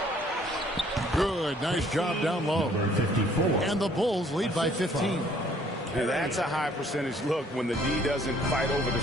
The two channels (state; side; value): normal; both; correlation 0.61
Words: Good. Nice job down low. Number 54. And the Bulls lead by 15. And that's a high percentage look when the D doesn't fight over the